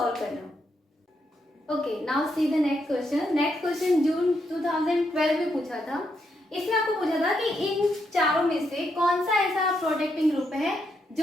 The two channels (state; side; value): normal; both; correlation 0.79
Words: करना। Okay, now see the next question. Next question जून 2012 में पूछा था। इसमें आपको पूछा था कि इन चारों में से कौन सा ऐसा प्रोटेक्टिंग ग्रुप है